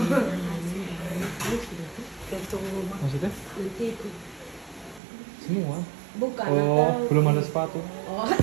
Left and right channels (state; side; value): drops out; left; at 5.0 s